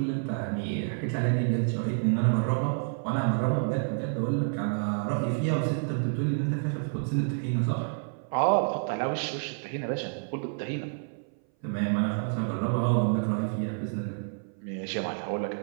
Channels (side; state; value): left; silent; 57 dB below the other